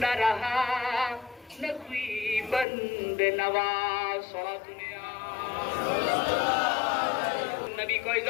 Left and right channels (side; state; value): right; drops out; at 2.7 s